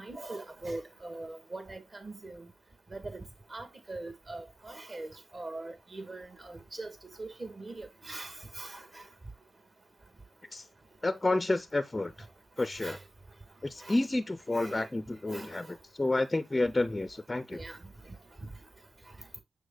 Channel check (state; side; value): normal; both; correlation 0.98